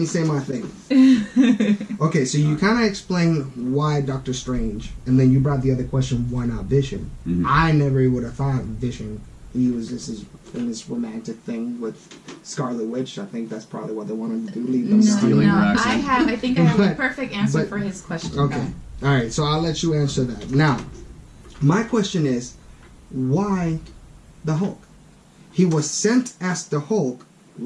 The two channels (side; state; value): both; identical; correlation 1.00